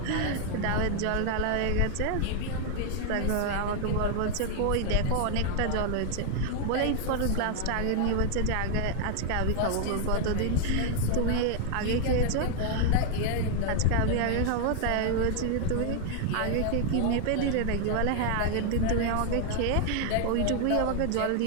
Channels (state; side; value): different; both; correlation 0.00